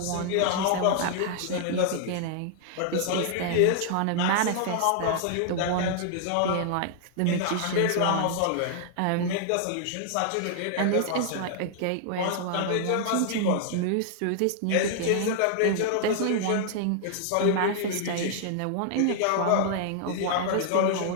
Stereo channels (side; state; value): both; different; correlation -0.01